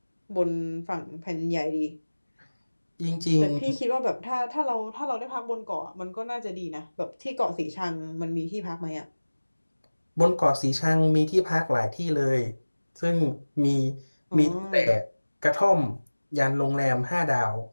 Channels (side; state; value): both; inverted; correlation -1.00